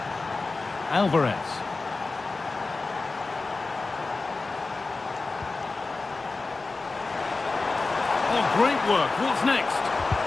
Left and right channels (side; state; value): right; quieter; 3.7 dB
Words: Alvarez. Oh, great work. What's next?